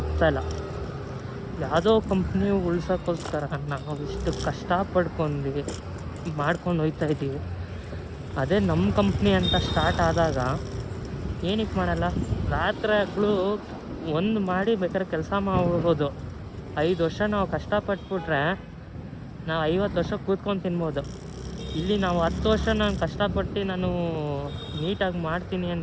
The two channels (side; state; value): both; identical; correlation 1.00